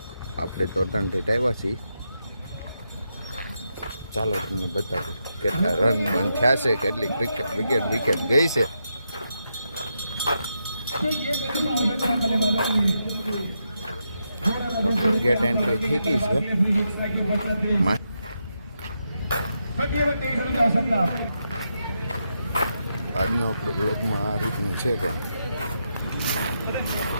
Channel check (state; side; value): inverted; both; correlation -0.84